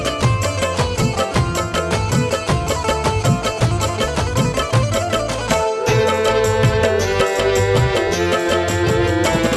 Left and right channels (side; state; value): both; identical; correlation 1.00